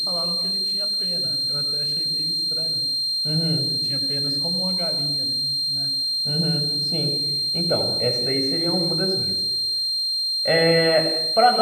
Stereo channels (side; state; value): both; identical; correlation 1.00